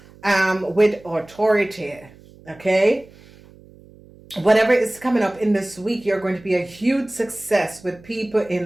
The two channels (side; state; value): right; noise; hum, 24 dB below the sound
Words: with authority, okay? Whatever is coming up in this week, you're going to be a huge success with people